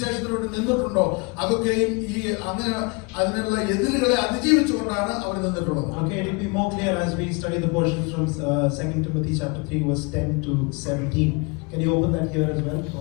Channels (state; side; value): quieter; right; 30.2 dB